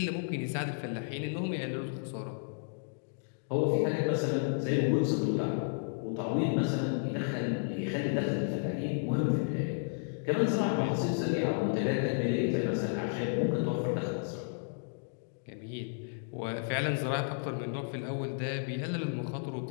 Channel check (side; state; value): right; silent; digital silence